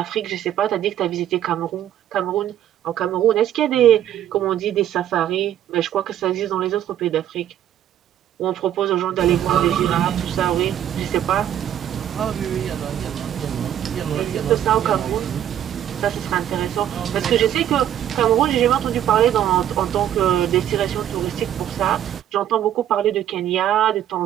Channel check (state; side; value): quieter; left; 11.0 dB